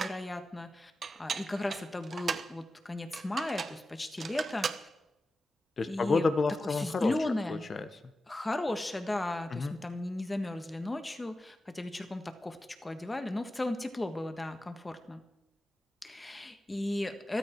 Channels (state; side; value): normal; both; correlation 0.93